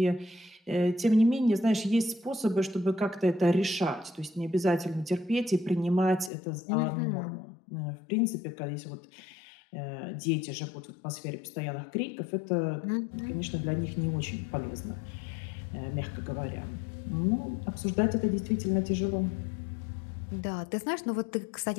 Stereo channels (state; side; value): drops out; right; at 6.3 s